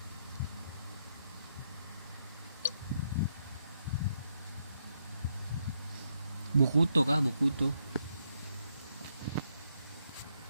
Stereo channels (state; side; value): inverted; both; correlation -0.78